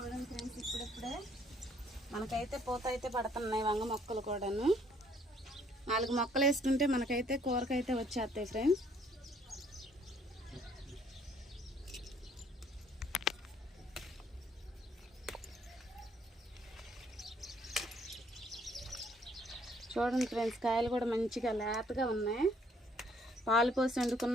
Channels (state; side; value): normal; both; correlation 0.64